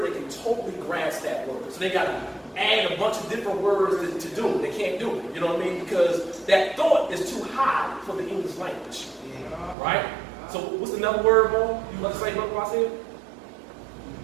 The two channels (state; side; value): drops out; left; at 9.8 s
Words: that can totally grasp that word. So they got to add a bunch of different words to do it. They can't do it. You know what I mean? Because that thought is too high for the English language. Right? So what's another word, Mo? You want to say what I said?